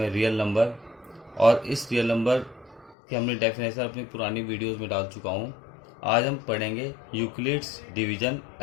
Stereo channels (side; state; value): right; drops out; at 3.0 s